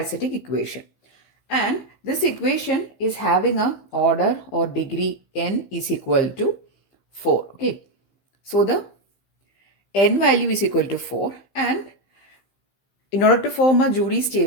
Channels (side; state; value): right; late; 15 ms